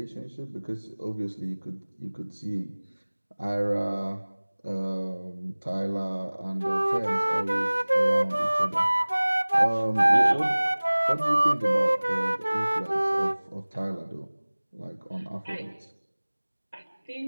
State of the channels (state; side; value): inverted; both; correlation -1.00